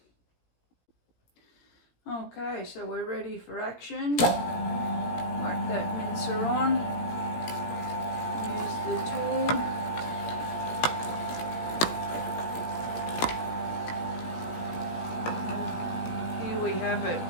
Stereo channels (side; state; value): right; late; 17 ms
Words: Okay, so we're ready for action. Whack that mincer on. Use the tool. Have it.